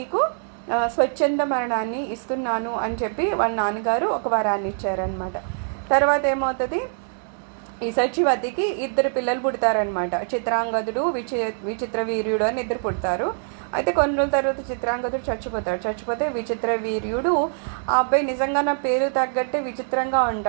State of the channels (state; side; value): silent; left; digital silence